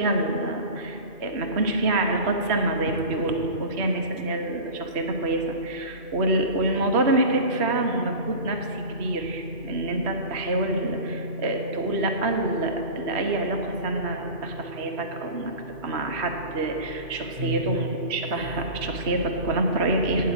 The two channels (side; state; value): left; late; 2.5 ms